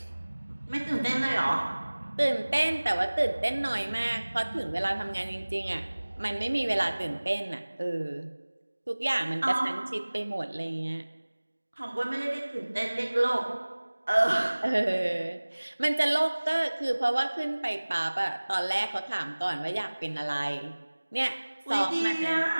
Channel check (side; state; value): both; inverted; correlation -1.00